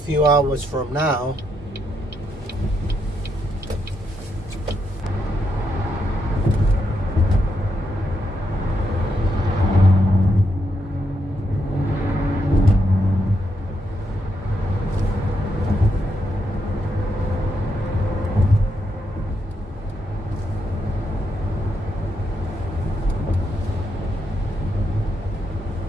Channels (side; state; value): both; normal; correlation 0.80